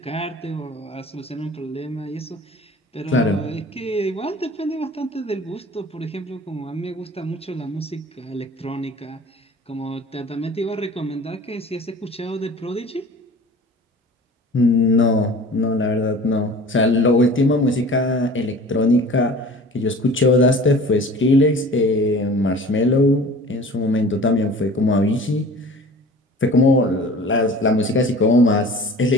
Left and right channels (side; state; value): both; normal; correlation 0.43